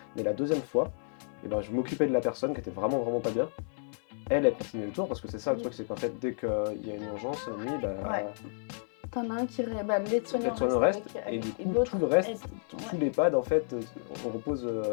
Mais la deuxième fois, je m'occupais de la personne qui était vraiment pas bien. Elle continue le tour parce que c'est ça le truc, c'est qu'en fait dès qu'il y a une urgence la nuit, t'en as un qui l'aide-soignant reste et du coup tout le reste, tout l'EHPAD en fait, on repose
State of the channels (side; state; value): right; silent; 57 dB below the other